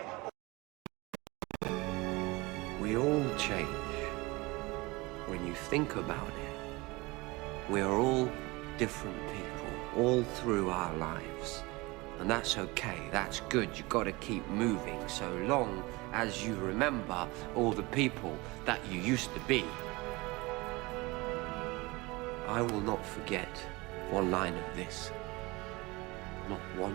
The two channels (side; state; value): left; quieter; 23.5 dB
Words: We all change. When you think about it, we are all different people, all through our lives. And that's okay, that's good, you gotta keep moving, so long as you remember all the people that you used to be. I will not forget one line of this. Not